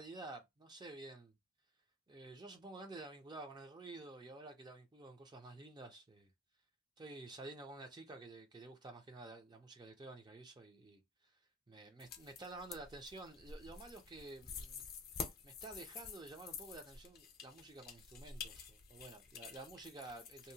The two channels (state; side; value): normal; both; correlation 0.38